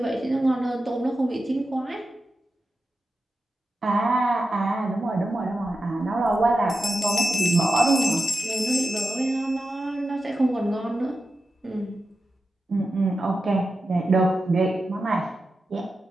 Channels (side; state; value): both; normal; correlation 0.91